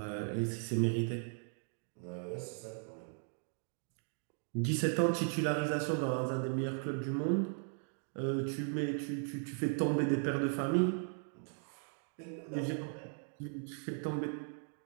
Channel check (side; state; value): left; silent; 53 dB below the other